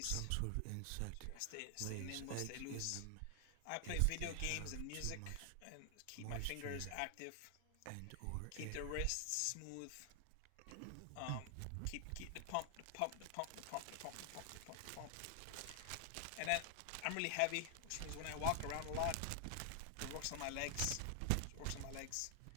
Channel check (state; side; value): different; both; correlation 0.00